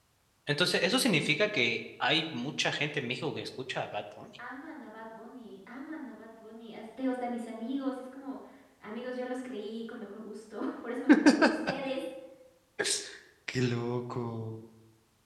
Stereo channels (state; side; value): identical; both; correlation 1.00